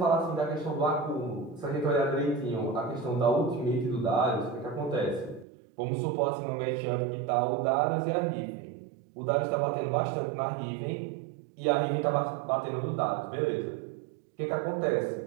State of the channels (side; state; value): left; drops out; at 5.5 s